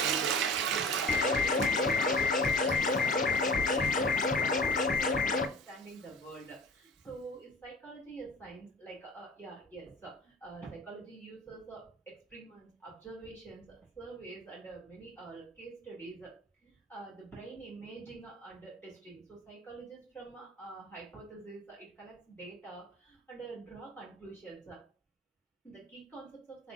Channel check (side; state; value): both; normal; correlation 0.40